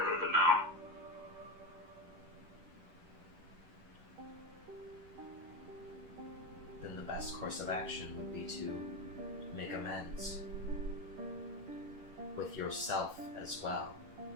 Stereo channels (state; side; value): late; left; 11 ms